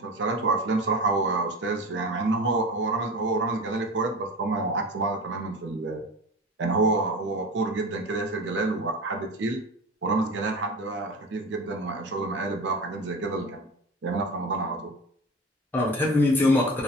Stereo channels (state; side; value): normal; both; correlation 0.32